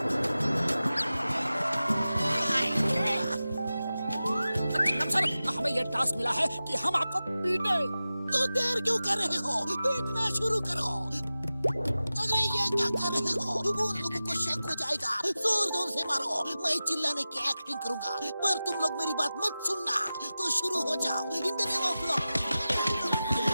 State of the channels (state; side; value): inverted; both; correlation -0.95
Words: हमें ये टास्क मिला है कि हम आपको पीटे। तो देर क्यों कर रहे हो? पीटना शुरू करो। अरे ये क्या कर रहे हो? उन लोगों को शक हो जाएगा। जोर से मारो, मैं चिल्लाने की एक्टिंग करूंगा, पर तुम लोग मेरी बात मत सुनना। तो शुरू हो जाओ। In the name of law.